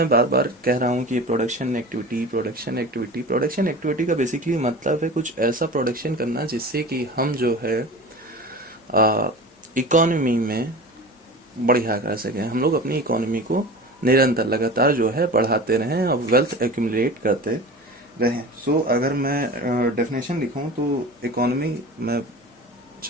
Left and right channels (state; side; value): normal; both; correlation 0.35